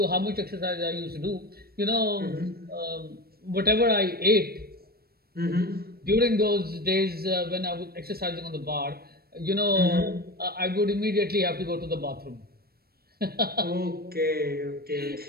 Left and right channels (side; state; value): left; late; 0.45 ms